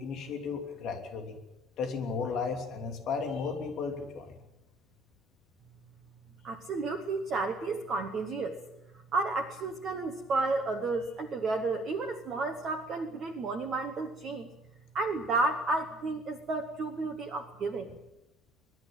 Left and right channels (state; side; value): normal; both; correlation 0.58